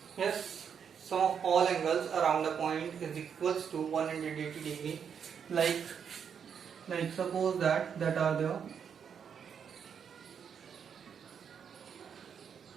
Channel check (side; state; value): left; quieter; 7.4 dB